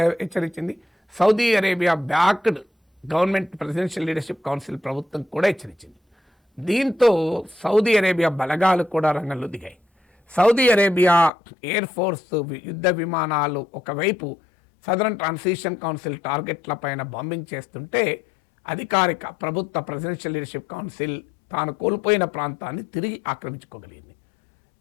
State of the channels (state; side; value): drops out; right; at 11.3 s